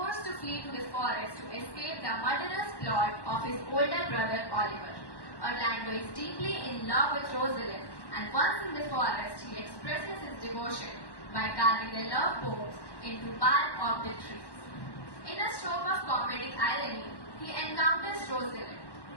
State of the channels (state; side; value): late; right; 1.1 ms